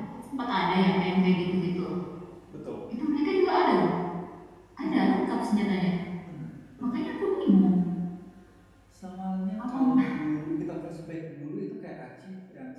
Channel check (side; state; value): both; identical; correlation 1.00